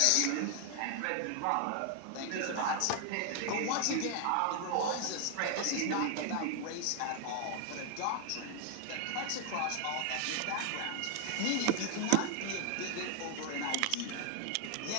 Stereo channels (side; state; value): both; different; correlation 0.00